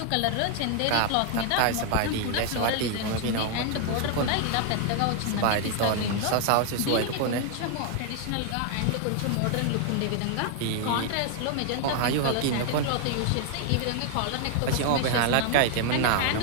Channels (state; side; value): different; both; correlation 0.00